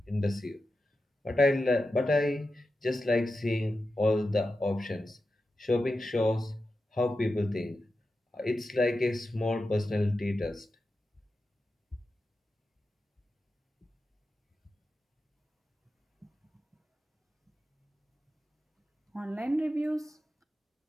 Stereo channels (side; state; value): both; normal; correlation 0.91